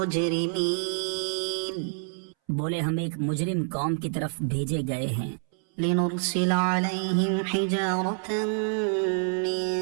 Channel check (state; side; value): silent; left; 60 dB below the other